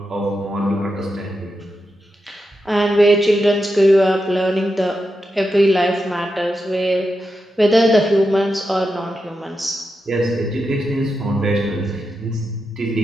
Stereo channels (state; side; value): normal; both; correlation 0.88